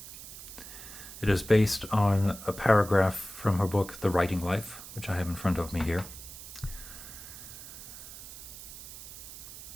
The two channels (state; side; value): noise; right; hiss, 13 dB below the sound